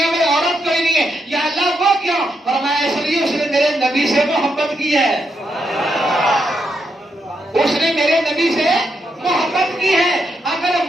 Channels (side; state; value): both; normal; correlation 0.81